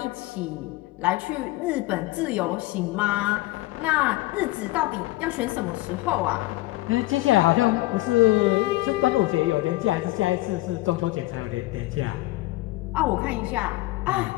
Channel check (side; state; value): right; quieter; 18.8 dB